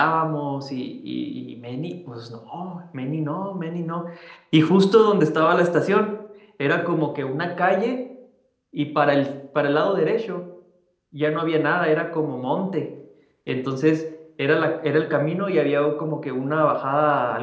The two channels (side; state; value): both; identical; correlation 1.00